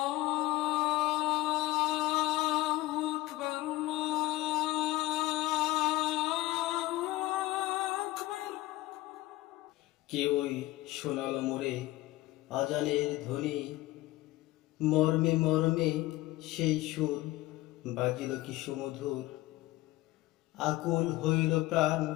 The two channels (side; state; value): right; quieter; 17.8 dB